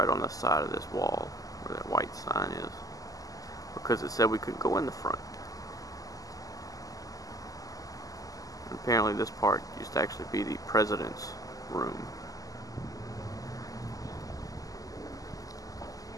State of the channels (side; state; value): right; late; 0.17 ms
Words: on the side of this wall where that white sign is, because it said we couldn't go in the front. And apparently this part used to actually be the president's room.